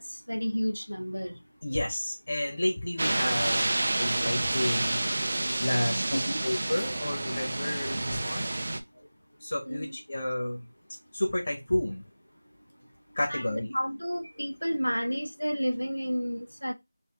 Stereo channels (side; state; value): both; inverted; correlation -0.98